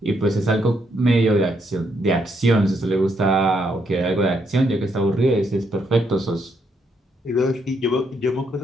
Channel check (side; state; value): both; normal; correlation 0.76